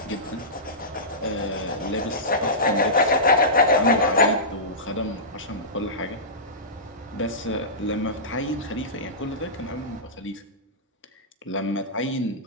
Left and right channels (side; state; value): both; normal; correlation -0.19